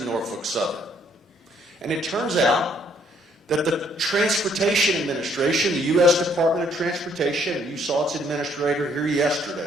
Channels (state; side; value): normal; both; correlation 0.66